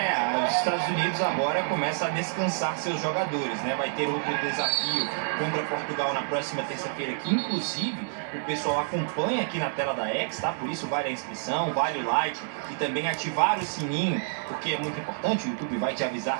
Os Estados Unidos agora começa a descansar seus jogadores, né? Vai ter outro desafio contra Portugal na próxima terça-feira, que inclusive o pessoal acompanha aqui na tela da X, tá? Por isso vale a inscrição, vale o like e também ativar o sininho, porque é muito importante, o YouTube vai te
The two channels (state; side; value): silent; left; 59 dB below the other